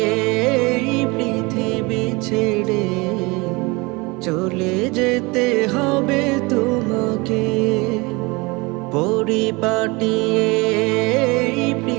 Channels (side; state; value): left; quieter; 25.5 dB